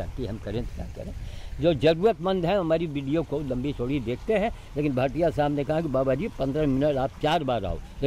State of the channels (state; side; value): identical; both; correlation 1.00